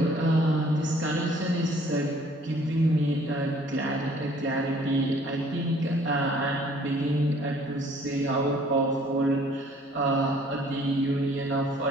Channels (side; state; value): both; normal; correlation 0.57